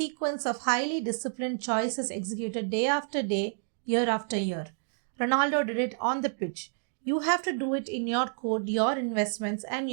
of highly disciplined choices executed day after day, year after year. Ronaldo did it on the pitch. You have to do it in your code, your investments, and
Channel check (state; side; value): silent; left; digital silence